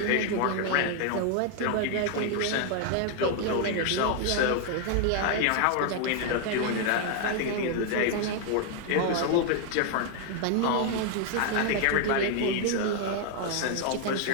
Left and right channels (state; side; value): different; both; correlation 0.00